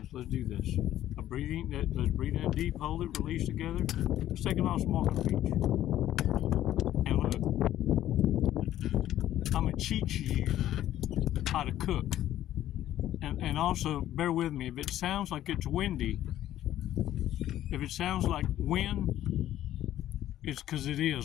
let's do this. Let's breathe in deep, hold it, release together. Let's take an awesome walk on the beach. And look, I'm going to teach you how to cook. And also, bear with me, if it sounds like it's windy, if it sounds like wind, it's because it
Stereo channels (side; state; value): right; quieter; 12.7 dB